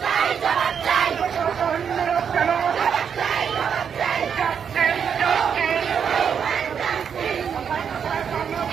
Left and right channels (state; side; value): quieter; left; 7.3 dB